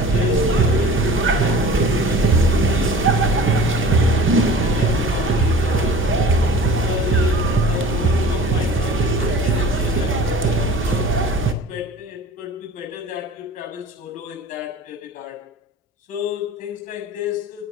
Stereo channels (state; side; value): normal; both; correlation 0.42